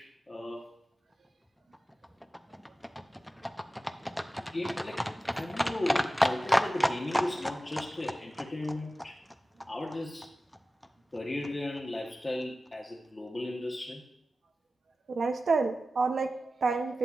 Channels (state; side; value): normal; both; correlation 0.95